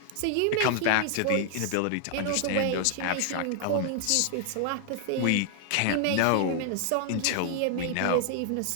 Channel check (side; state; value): both; different; correlation 0.00